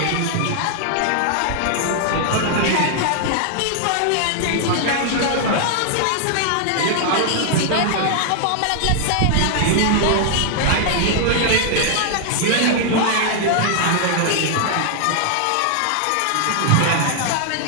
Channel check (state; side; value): different; both; correlation 0.00